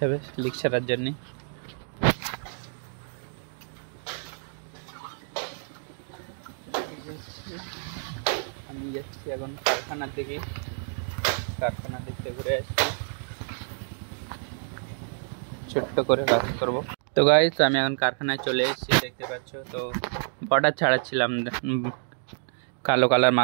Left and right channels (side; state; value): left; silent; 59 dB below the other